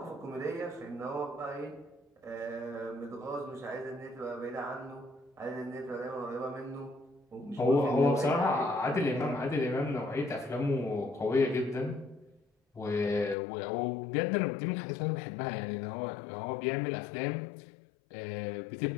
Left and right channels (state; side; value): drops out; right; at 13.4 s